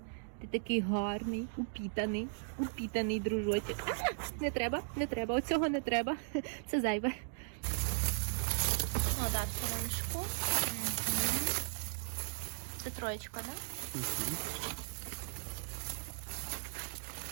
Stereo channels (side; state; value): left; silent; digital silence